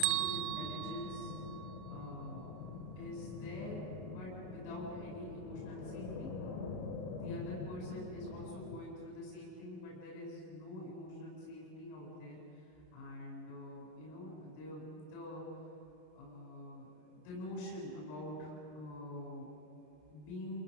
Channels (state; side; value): late; right; 33 ms